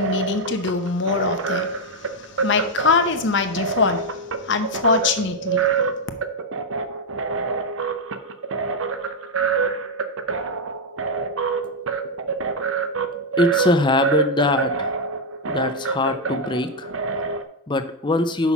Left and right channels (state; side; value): normal; both; correlation 0.02